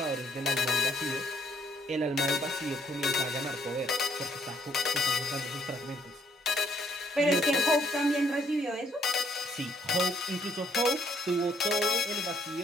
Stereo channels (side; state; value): both; normal; correlation 0.67